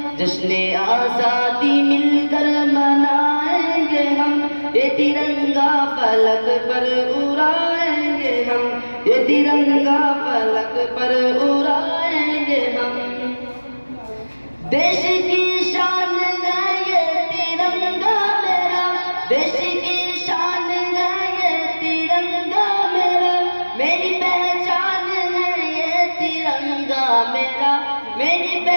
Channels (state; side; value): inverted; both; correlation -1.00